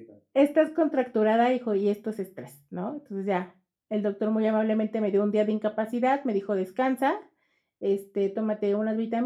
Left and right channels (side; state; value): both; identical; correlation 1.00